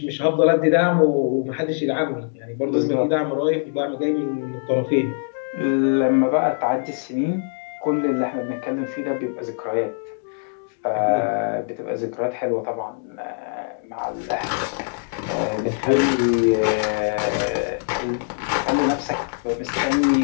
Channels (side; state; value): right; silent; digital silence